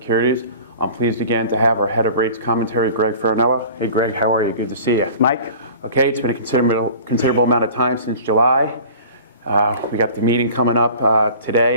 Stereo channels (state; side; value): inverted; both; correlation -0.42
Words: I'm pleased again to have our head of rates commentary, Greg Faranello. Hey, Greg, how are you? Good to see you. Mike? Okay, it's been a considerable amount of time since July. We got the meeting coming up